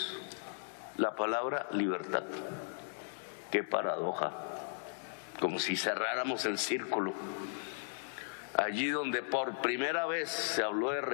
la palabra libertad. Qué paradoja, como si cerráramos el círculo. Allí donde por primera vez se habló de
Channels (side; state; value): right; silent; 53 dB below the other